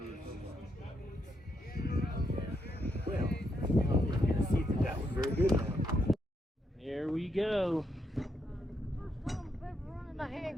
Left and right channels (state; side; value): normal; both; correlation 0.79